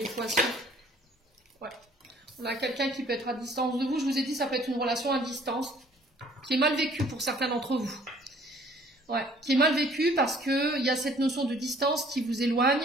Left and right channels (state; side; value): normal; both; correlation 0.57